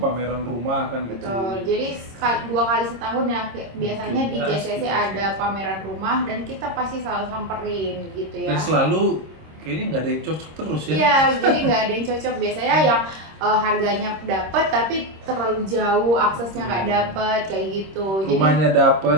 pameran rumah kan gitu. Betul. Jadi 2 kali setahun ya biasanya di JCC ada pameran rumah dan kita pasti selalu samperin gitu ya. Dan selalu kayaknya nggak ada yang cocok terus ya. Iya, jadi nggak ada yang cocok. Biasanya yang harganya dapat tapi terlalu jauh, aksesnya nggak dapat kayak gitu. Rumahnya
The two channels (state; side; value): late; left; 26 ms